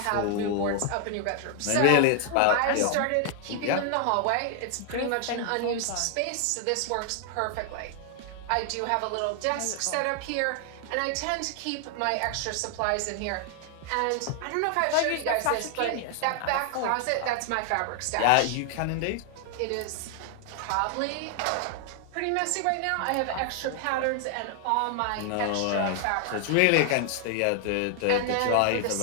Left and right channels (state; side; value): different; both; correlation 0.00